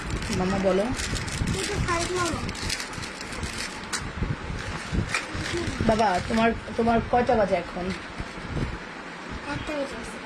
মামা বলো। বাবা, তোমার কয়টা বাজে এখন?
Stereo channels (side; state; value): both; identical; correlation 1.00